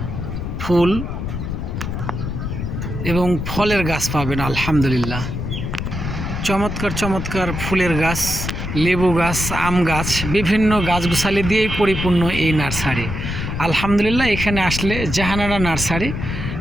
ফুল এবং ফলের গাছ পাবেন। আলহামদুলিল্লাহ, চমৎকার চমৎকার ফুলের গাছ, লেবু গাছ, আম গাছ, বিভিন্ন গাছগুছালি দিয়েই পরিপূর্ণ এই নার্সারি। আলহামদুলিল্লাহ, এখানে আসলে জাহানারা নার্সারি,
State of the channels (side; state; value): left; noise; rumble, 4 dB below the sound